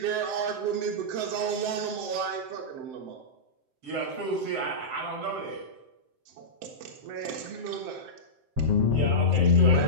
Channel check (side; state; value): left; late; 7.7 ms